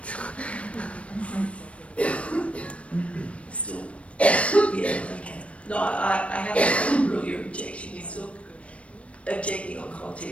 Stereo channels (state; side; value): late; right; 0.062 ms